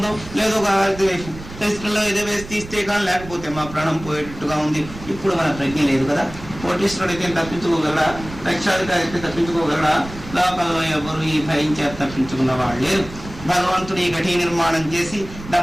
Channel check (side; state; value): right; noise; rumble, 14 dB below the sound